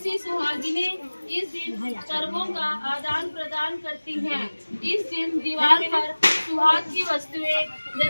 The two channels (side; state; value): both; inverted; correlation -1.00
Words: सुहागिनें इस दिन करवों का आदान प्रदान करती हैं। इस दिन दीवार पर सुहाग की वस्तुएं